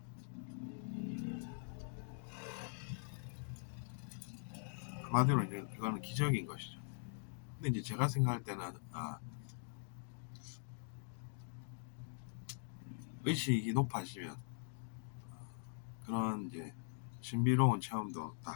한마디로 이제 이거는 기적인 것이죠. 근데 이제 제가 생각할 때는 의식이 높아지면 그런 이제 신비로운 체험도 다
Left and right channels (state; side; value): silent; right; digital silence